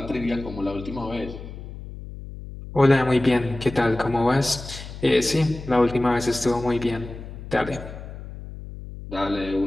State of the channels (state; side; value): noise; left; hum, 12 dB below the sound